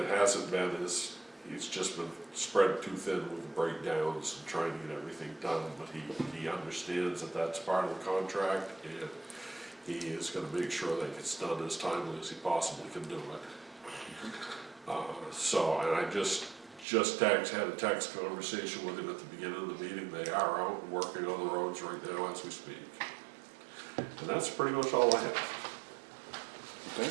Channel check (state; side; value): drops out; left; at 16.9 s